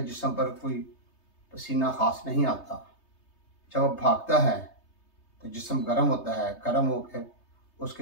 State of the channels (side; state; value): right; late; 3.3 ms